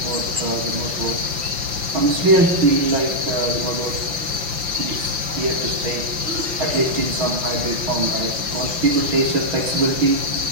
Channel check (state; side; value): late; left; 5.8 ms